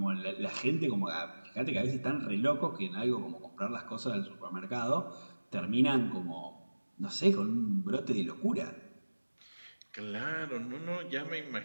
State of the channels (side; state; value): both; inverted; correlation -1.00